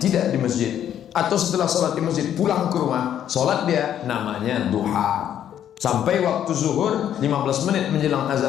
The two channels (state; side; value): quieter; right; 10.2 dB